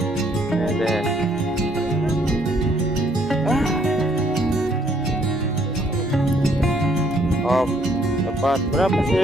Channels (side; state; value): both; normal; correlation 0.66